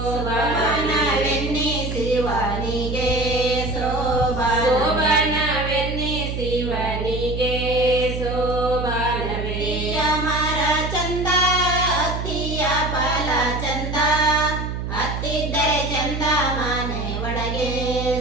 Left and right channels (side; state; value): right; noise; hum, 4 dB below the sound